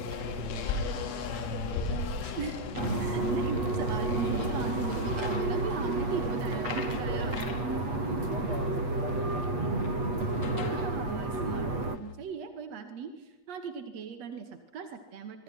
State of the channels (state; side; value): late; left; 8.3 ms